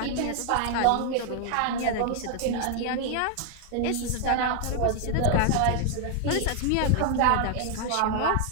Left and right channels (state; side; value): different; both; correlation 0.00